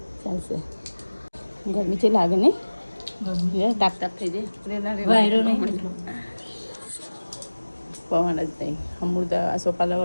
ચાલશે ગરમી છે લાગે ને તાપ તાપ થઈ જાય વાયરો નહીં પવન જ નહીં અમૃત આ સોપાલા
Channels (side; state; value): both; inverted; correlation -1.00